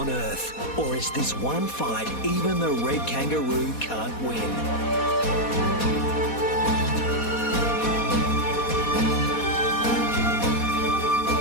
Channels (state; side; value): late; right; 4.2 ms